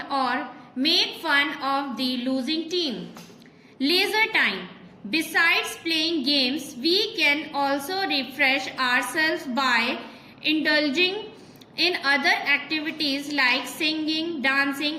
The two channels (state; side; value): identical; both; correlation 1.00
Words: or make fun of the losing team. Leisure time. Besides playing games, we can also refresh ourselves by indulging in other activities like singing,